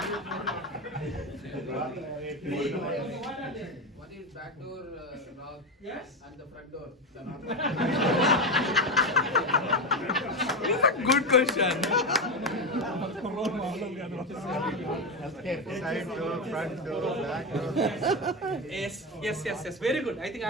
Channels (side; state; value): both; normal; correlation 0.14